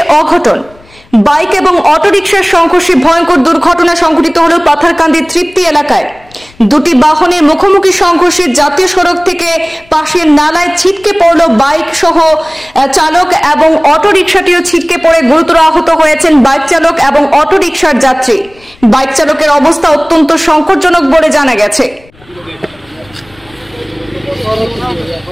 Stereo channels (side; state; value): left; noise; rumble, 28 dB below the sound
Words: অঘটন। বাইক এবং অটোরিকশার সংঘর্ষে ভয়ঙ্কর দুর্ঘটনা সংঘটিত হল পাথারকান্দি তৃপ্তি এলাকায়। দুটি বাহনের মুখোমুখি সংঘর্ষে জাতীয় সড়ক থেকে পাশের নালায় ছিটকে পড়ল বাইক সহ চালক এবং অটোরিকশাটিও ছিটকে পড়ে গুরুতর আহত হয়েছেন বাইক চালক এবং অটোরিকশার যাত্রী। বাইক চালকের অবস্থা অত্যন্ত সংকটজনক বলে জানা গেছে।